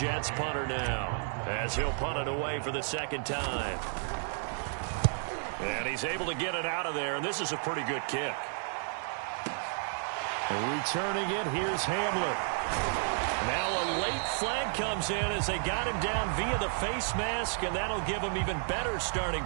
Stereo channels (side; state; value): left; silent; 56 dB below the other